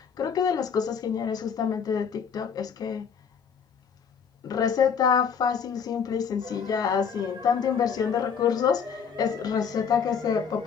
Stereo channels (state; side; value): quieter; right; 6.8 dB